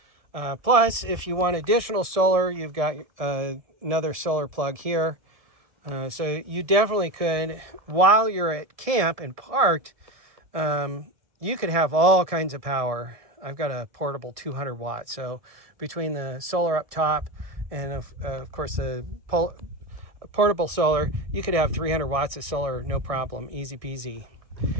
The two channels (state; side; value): late; left; 1.7 ms